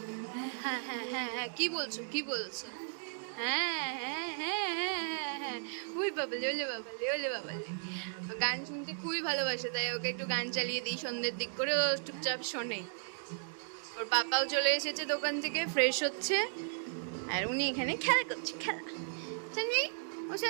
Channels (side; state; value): left; silent; digital silence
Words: হ্যাঁ হ্যাঁ হ্যাঁ হ্যাঁ, কি বলছো কি বলছো? হ্যাঁ হ্যাঁ হ্যাঁ হ্যাঁ হ্যাঁ হ্যাঁ, ওই বাবালে, ওলে বাবালে, ওলে বাবালে। গান শুনতে খুবই ভালোবাসে, তাই ওকে একটু গান চালিয়ে দিই সন্ধ্যের দিক করে, ও চুপচাপ শোনে। ওর পাপাও চলে এসেছে দোকান থেকে, ফ্রেশ হচ্ছে, আর উনি এখানে খেলা করছে। খেলা সানভি, ও